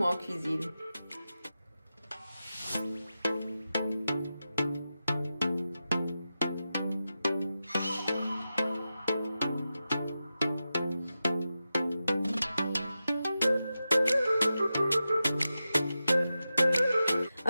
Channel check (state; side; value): inverted; both; correlation -0.92